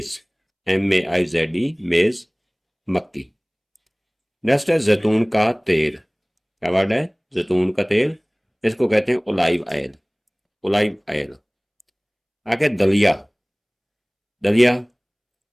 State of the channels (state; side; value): identical; both; correlation 1.00